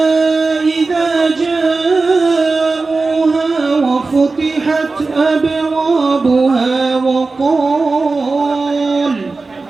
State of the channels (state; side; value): quieter; left; 3.8 dB